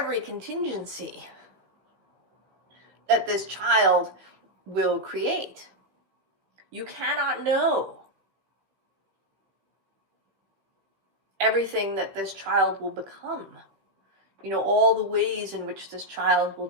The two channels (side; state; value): left; late; 16 ms